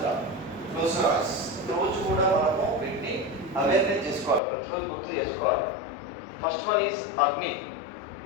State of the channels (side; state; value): right; drops out; at 4.4 s